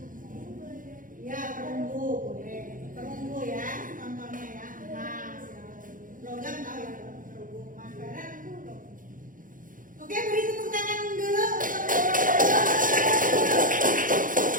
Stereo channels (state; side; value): late; left; 0.39 ms